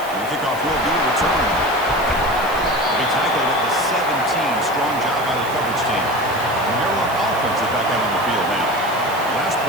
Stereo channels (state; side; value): noise; right; hiss, 16 dB below the sound